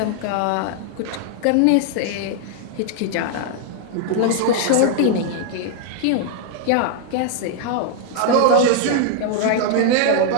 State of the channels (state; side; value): different; both; correlation 0.00